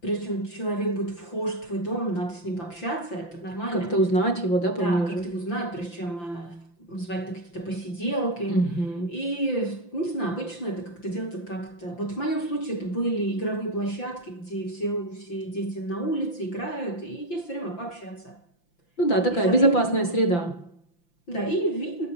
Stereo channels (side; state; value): right; late; 5.8 ms